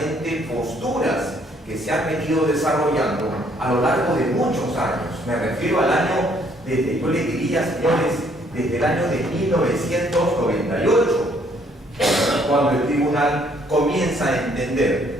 posturas que se han venido desarrollando a lo largo de muchos años. Me refiero al año, yo le diría, señores, desde el año de 1998, cuando el tribunal comienza a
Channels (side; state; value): both; normal; correlation 0.65